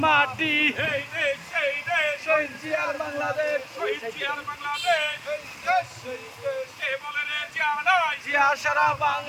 মাটি। এই দেশ সেই দেশ শহীদ জিয়ার বাংলাদেশ, শহীদ জিয়ার বাংলাদেশ কে বলে রে জিয়া নাই জিয়া সারা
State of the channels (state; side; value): identical; both; correlation 1.00